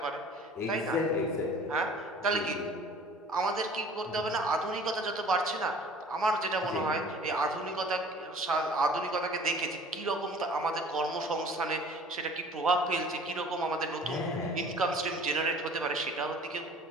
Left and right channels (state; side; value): normal; both; correlation 0.48